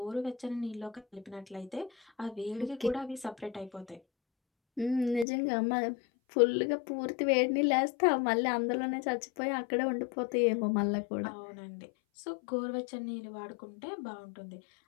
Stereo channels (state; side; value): drops out; right; at 5.2 s